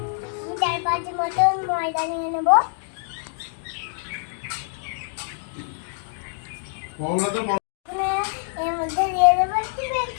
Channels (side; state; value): right; silent; 62 dB below the other